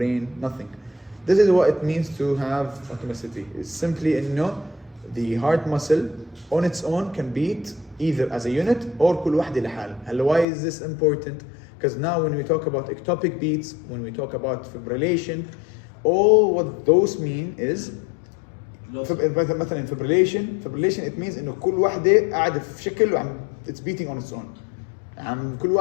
Nothing. This is what it means to have automaticity. It's simply إنه the heart muscle on its own can beat either as a unit or كل واحدة لحال. هلا why is this important? Because now when we talk about ectopic beats, when we talk about fibrillation, all what those mean is مثلا fibrillation it means إنه كل واحدة قاعدة في شكل وعم it's beating on its own. كل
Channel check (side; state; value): right; drops out; at 10.5 s